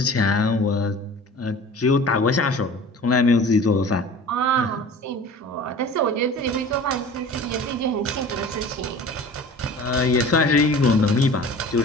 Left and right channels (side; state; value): both; normal; correlation 0.41